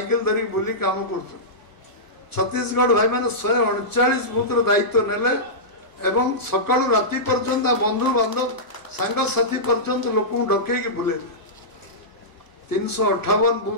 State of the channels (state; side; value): late; right; 1.0 ms